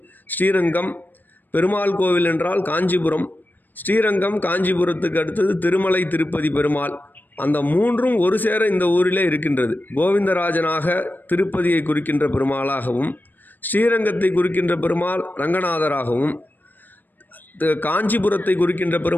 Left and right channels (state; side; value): late; right; 0.089 ms